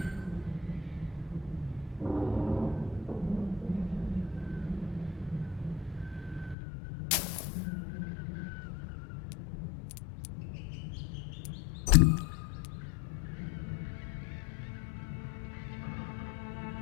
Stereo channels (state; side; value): drops out; right; at 6.6 s